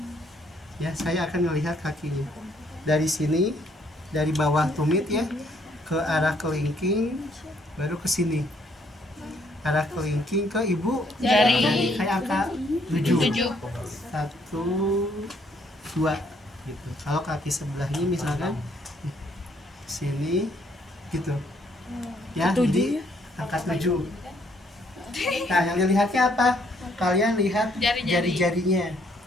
Ya saya akan melihat kakinya. Dari sini, dari bawah tumit ya, ke arah kelingking, baru ke sini. Arah kelingking ke ibu Jari. kayak angka 7. 1, 2 gitu. Kalau kaki sebelahnya misalkan sini gitu. Ya, jadi angka 7. Nah, yang dilihatnya apa? Kalian lihat jari-jarinya.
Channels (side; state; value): both; normal; correlation 0.68